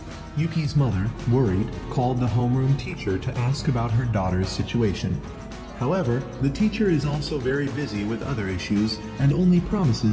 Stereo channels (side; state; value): both; identical; correlation 1.00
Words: Yuki's mother, worried, called the homeroom teacher to ask about her daughter's situation. However, the teacher is also very busy with other issues and only